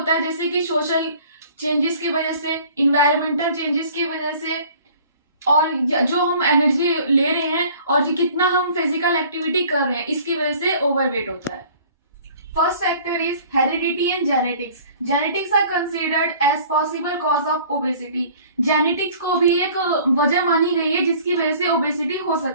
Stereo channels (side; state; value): both; inverted; correlation -0.50